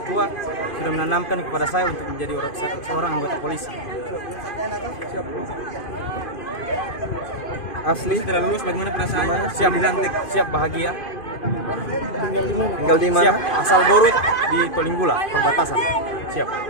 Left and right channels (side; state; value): right; late; 2.5 ms